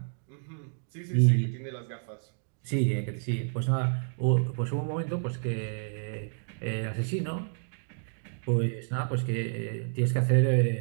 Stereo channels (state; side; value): silent; left; digital silence